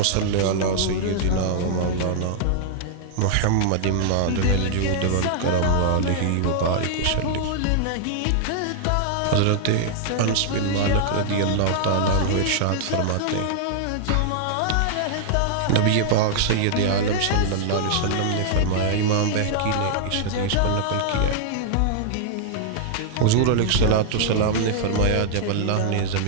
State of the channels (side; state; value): both; different; correlation -0.01